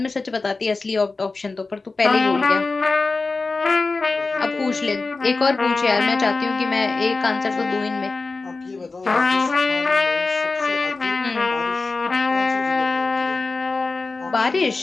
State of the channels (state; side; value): quieter; right; 3.8 dB